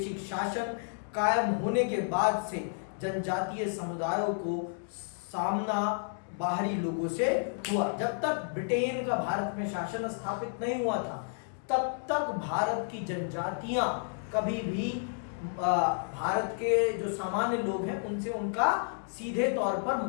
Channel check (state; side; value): silent; right; digital silence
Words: शासन कायम होने के बाद से जनजातीय समुदायों को सामना बाहरी लोगों से हुआ। जब तक ब्रिटेन का भारत में शासन स्थापित नहीं हुआ था, तब तक भारत की जनजातियां कभी भी भारत के जो सामान्य लोग हैं उनसे उनका सीधे तौर पर